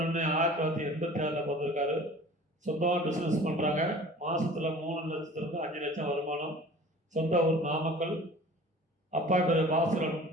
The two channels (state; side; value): normal; both; correlation 0.44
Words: பிறந்திருக்காரு. சொந்தமாக பிஸ்னஸ் பண்ணுறாங்க. மாதத்தில் 3 லட்சத்துலேருந்து 5 லட்சம் வருமானம். சொந்த ஊர் நாமக்கல். அப்பா பேர் பாசுரன்